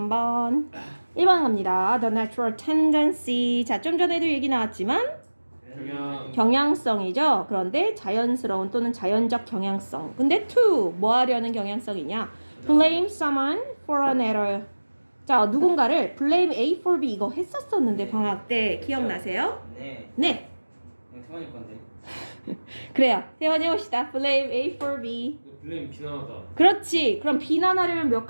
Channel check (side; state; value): both; inverted; correlation -1.00